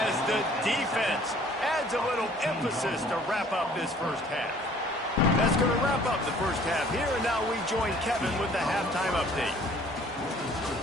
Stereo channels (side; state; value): both; normal; correlation 0.55